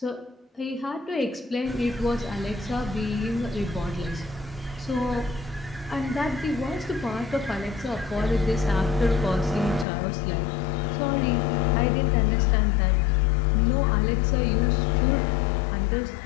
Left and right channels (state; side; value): drops out; right; at 9.9 s